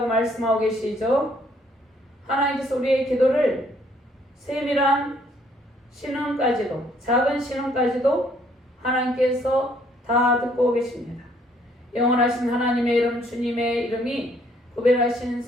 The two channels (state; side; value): normal; both; correlation 0.65